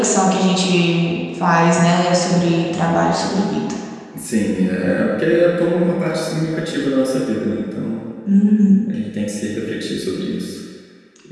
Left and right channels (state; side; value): identical; both; correlation 1.00